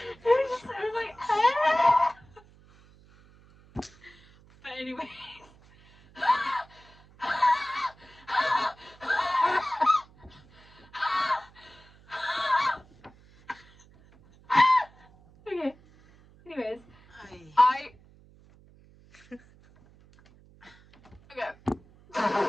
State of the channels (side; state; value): right; noise; hum, 27 dB below the sound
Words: it was, viewership. it was like, ah! But anyway. Okay. Anyways, Ay. okay.